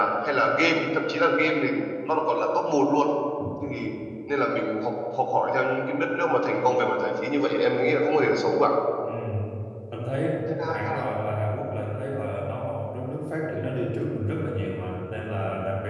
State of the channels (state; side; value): identical; both; correlation 1.00